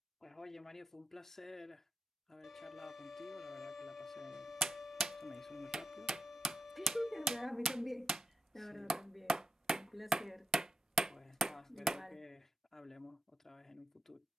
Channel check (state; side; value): normal; both; correlation 0.89